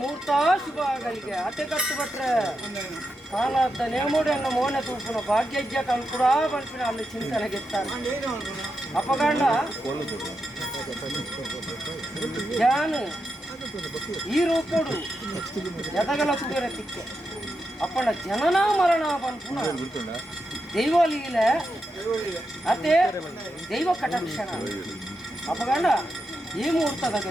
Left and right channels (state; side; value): normal; both; correlation 0.87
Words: ಶುಭ ಆಗಲಿಗೆ ಅತೆ ಕಟ್ಟು ಬಟ್ರೆ ಕಾಲದ ನೇಮೋಡನ್ನ ಮೋನೆ ತೂಪುನ ಭಾಗ್ಯಜ್ಯ ಕಲ್ಕುಡ ಬಲ್ಪಿನ ಅಲ್ಲಿ ಚಿಂತನೆ ಗೆತ್ತಾರೆ ಅಪಗಂಡ ಜ್ಞಾನ ಈ ರೂಪಡು ಎದಗಲ ತುಗರ ತಿಕ್ಕೆ ಅಪ್ಪಣ ಜನನ ಮರಣ ಬಂದ್ಪುನ ದೈವಲೀಲ ಅದೇ ದೈವ ಕಟಾಕ್ಷಣ ಅಪಗಂಡ ಈ ಮುಹೂರ್ತದ